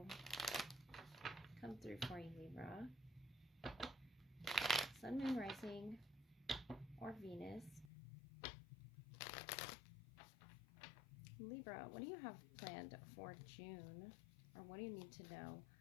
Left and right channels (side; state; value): right; drops out; at 7.9 s